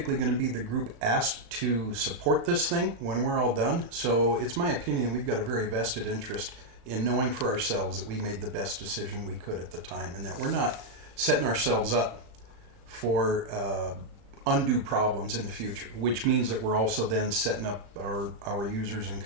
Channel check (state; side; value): late; left; 35 ms